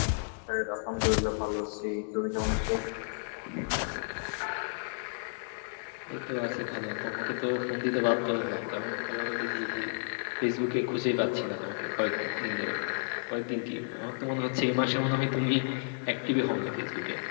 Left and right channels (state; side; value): silent; right; 57 dB below the other